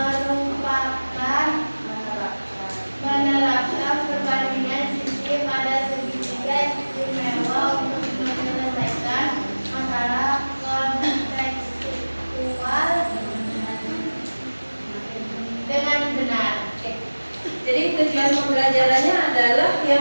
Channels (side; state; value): both; inverted; correlation -1.00